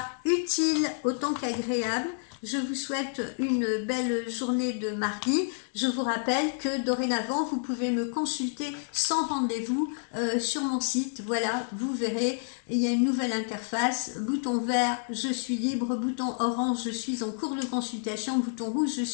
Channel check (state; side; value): silent; right; digital silence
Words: utile autant qu'agréable. Je vous souhaite une belle journée de mardi. Je vous rappelle que dorénavant, vous pouvez me consulter sans rendez-vous sur mon site. Voilà, vous verrez, il y a une nouvelle interface. Bouton vert, je suis libre. Bouton orange, je suis en cours de consultation. Bouton rouge, je